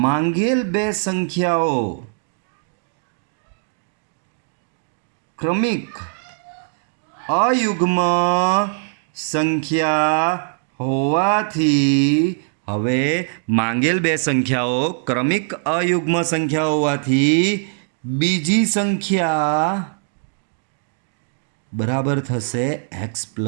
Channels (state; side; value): silent; left; digital silence